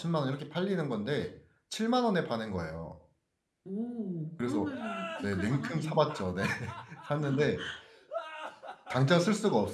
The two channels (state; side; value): identical; both; correlation 1.00